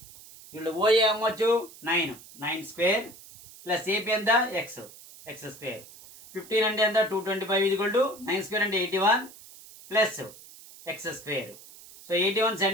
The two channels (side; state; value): right; noise; hiss, 19 dB below the sound